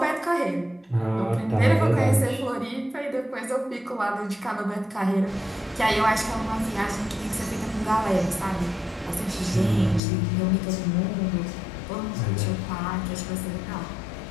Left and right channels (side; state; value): right; drops out; at 10.0 s